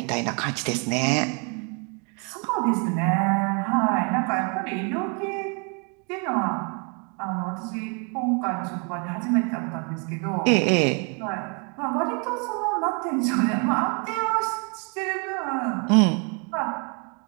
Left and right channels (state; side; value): quieter; left; 35.7 dB